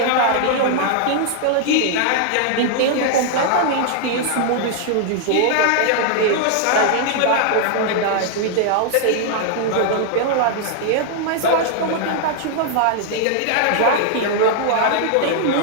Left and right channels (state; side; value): different; both; correlation 0.00